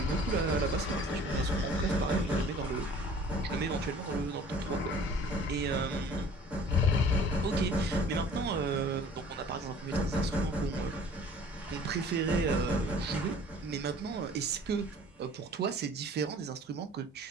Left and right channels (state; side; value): normal; both; correlation 0.50